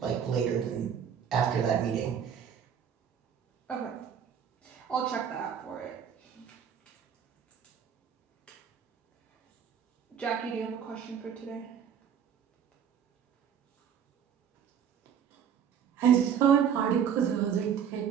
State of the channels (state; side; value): quieter; left; 8.1 dB